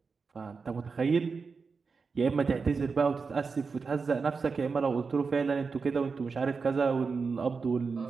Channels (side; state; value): left; quieter; 4.9 dB